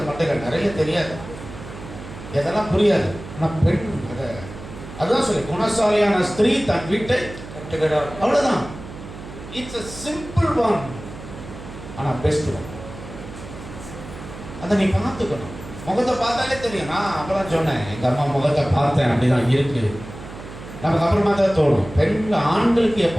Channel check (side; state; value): right; noise; hum, 13 dB below the sound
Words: மட்டைகள் நிறைய தெரியாது, எதெல்லாம் புரியாது. ஆனால் பெண் அதுதான் சொல்லி குணசாலியான ஸ்திரீ தன் வீட்டை கட்டுகிறார், அவ்வளோதான். இட்ஸ் a simple one, ஆனால் பெஸ்ட் ஒன். அதை நீ பார்த்துக்கணும். முகத்தை பார்த்தாலே தெரியும். நான் அப்பதான் சொன்னேன், எங்கள் அம்மா முகத்தை பார்த்தேன், அப்படிதான் இருக்கு. நமக்கு அப்புறமா தான் தோணும். ஆண்களுக்கு